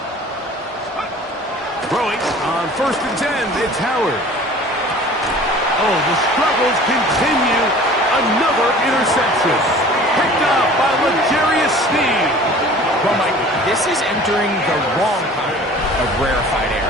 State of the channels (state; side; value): normal; both; correlation 0.45